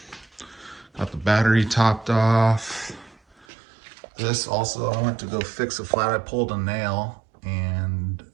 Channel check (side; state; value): left; drops out; at 3.5 s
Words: Got the battery topped off. This also, I went to go fix a flat. I pulled a nail, and